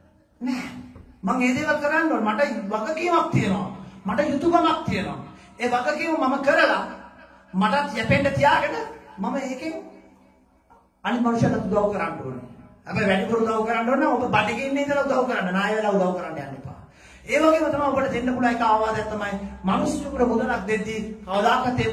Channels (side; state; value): both; identical; correlation 1.00